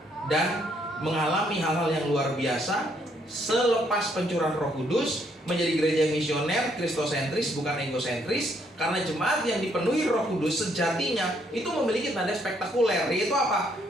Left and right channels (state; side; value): normal; both; correlation 0.70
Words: dan mengalami hal-hal yang luar biasa selepas pencurahan Roh Kudus, menjadi gereja misioner, kristosentris bukan egosentris. Karena jemaat yang dipenuhi Roh Kudus sejatinya itu memiliki tanda spektakuler, yaitu apa?